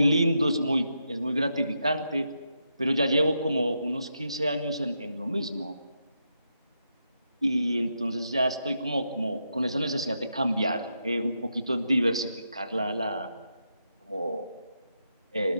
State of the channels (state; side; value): inverted; both; correlation -0.83